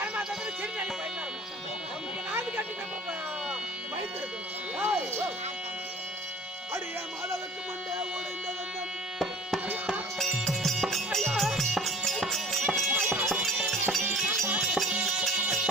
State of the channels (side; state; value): both; normal; correlation 0.46